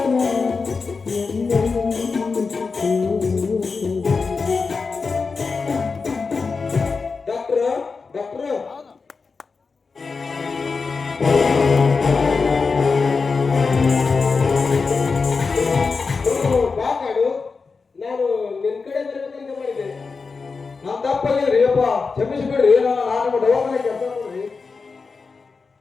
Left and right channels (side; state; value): right; quieter; 4.7 dB